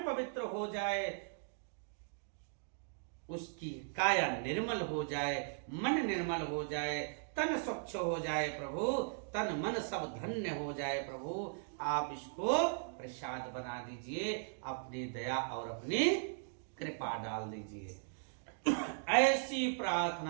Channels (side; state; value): left; silent; digital silence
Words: पवित्र हो जाए, उसकी काया निर्मल हो जाए, मन निर्मल हो जाए, तन स्वच्छ हो जाए प्रभु, तन मन सब धन्य हो जाए प्रभु। आप इसको प्रसाद बना दीजिए, अपनी दया और अपनी कृपा डाल दीजिए। ऐसी